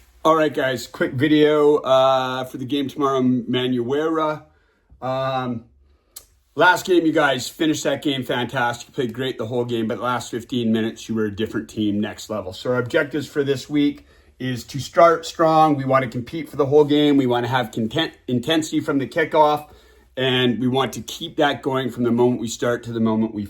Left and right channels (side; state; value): both; identical; correlation 1.00